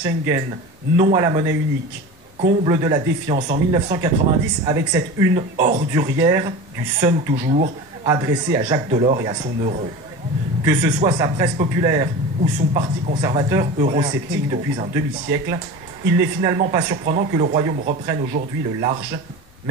Schengen, non à la monnaie unique. Comble de la défiance en 1990 avec cette une ordurière du Sun toujours, adressée à Jacques Delors et à son euro. Que ce soit sa presse populaire ou son parti conservateur eurosceptique depuis un demi-siècle, il n'est finalement pas surprenant que le royaume reprenne aujourd'hui le large,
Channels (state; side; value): normal; both; correlation 0.31